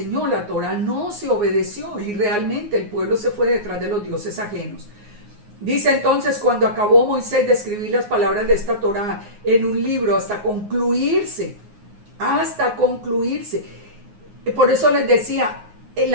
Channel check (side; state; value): left; late; 9.6 ms